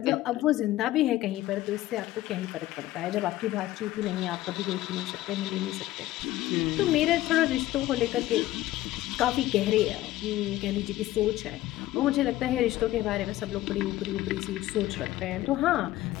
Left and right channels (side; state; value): right; quieter; 15.7 dB